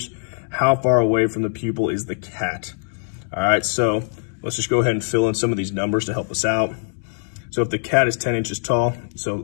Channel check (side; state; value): right; silent; 64 dB below the other